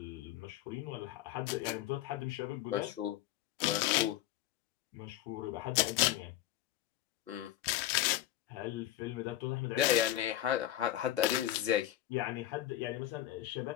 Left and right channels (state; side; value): quieter; right; 13.2 dB